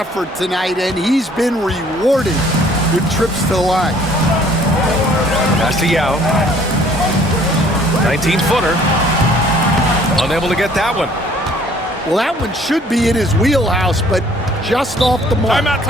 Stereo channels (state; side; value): normal; both; correlation 0.58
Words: tonight, and he's been rewarded with trips to the line. Pass to Yao. 19-footer. Unable to get that one. Well, that one should be in his wheelhouse, but just off the mark.